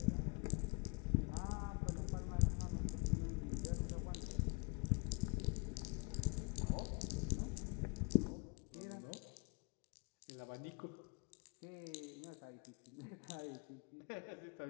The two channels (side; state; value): right; quieter; 32.8 dB